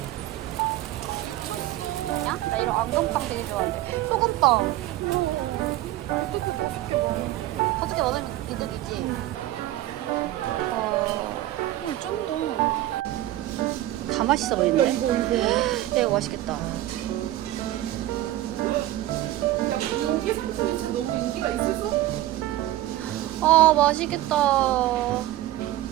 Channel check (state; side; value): quieter; left; 15.2 dB